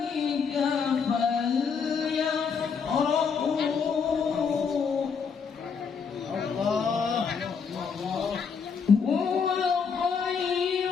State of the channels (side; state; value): right; quieter; 6.0 dB